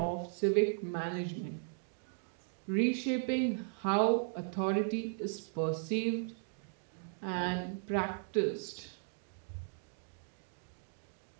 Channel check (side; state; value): left; silent; digital silence